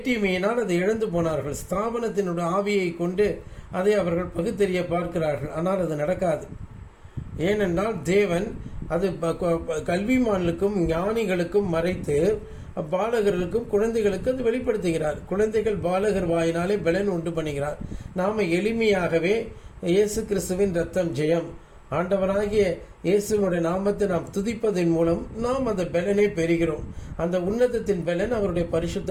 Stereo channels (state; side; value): identical; both; correlation 1.00